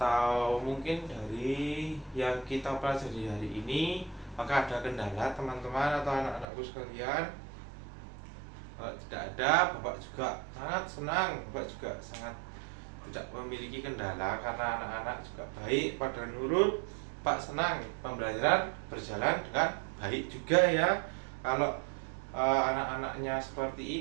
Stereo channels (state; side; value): drops out; left; at 6.5 s